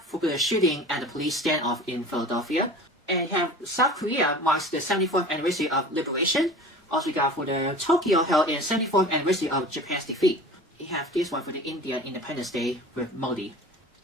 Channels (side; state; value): both; normal; correlation 0.39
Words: the shooting at the police standoff in Philadelphia. And have South Korea marks the 74th anniversary of liberation. Also we got for the Tokyo held in 74th anniversary of Japan's defeat. You have this one for the Indian Independence Day with Modi.